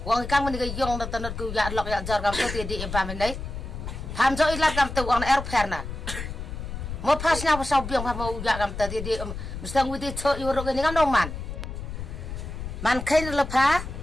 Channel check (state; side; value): noise; left; rumble, 7 dB below the sound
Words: wang kang men ke yong na tanat ku ya lok ya jar gam te di em pamen dai tham jo ilat gam te wang air fair na mo pas nya pasau biang pa mo ya gam te di mestang wi di cho yo ro ke ngam dong man khain la pha